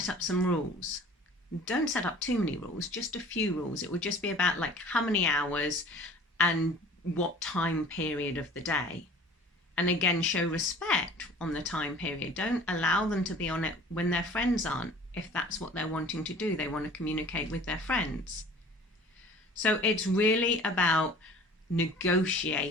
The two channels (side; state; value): both; normal; correlation 0.46